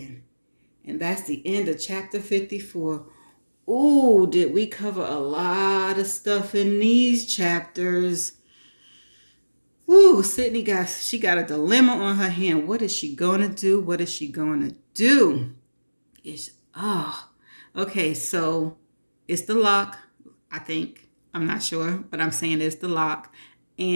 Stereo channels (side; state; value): both; inverted; correlation -1.00